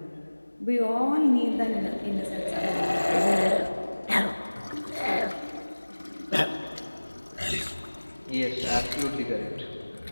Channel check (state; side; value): inverted; both; correlation -1.00